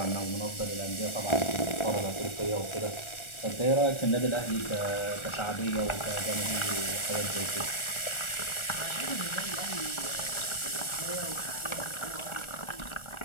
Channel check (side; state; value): right; late; 1.4 ms